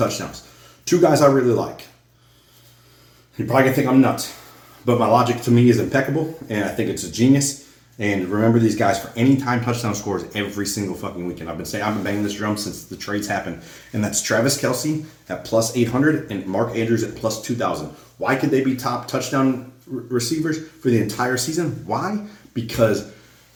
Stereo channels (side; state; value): both; identical; correlation 1.00